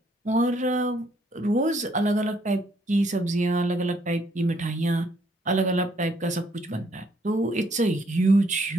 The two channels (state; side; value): normal; both; correlation 0.68